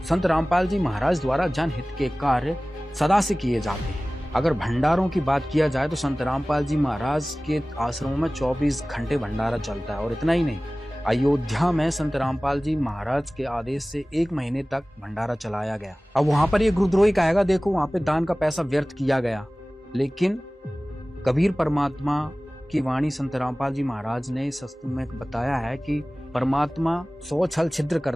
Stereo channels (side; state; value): both; normal; correlation 0.98